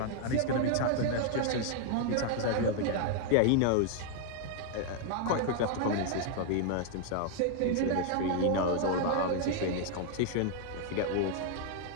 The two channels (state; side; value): different; both; correlation 0.00